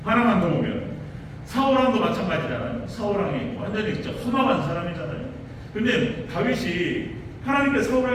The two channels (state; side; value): identical; both; correlation 1.00